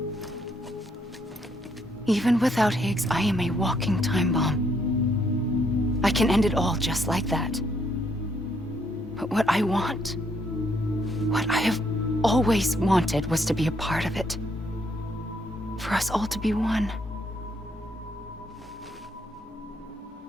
Even without Higgs, I am a walking time bomb. I can end it all just like that. But what I want, what I have always wanted, was to be a part of it. For us all to be one.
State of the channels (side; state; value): both; normal; correlation 0.72